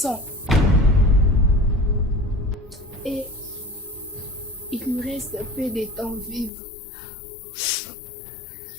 Et il lui reste un peu de temps vivre. Je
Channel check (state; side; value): drops out; right; at 6.5 s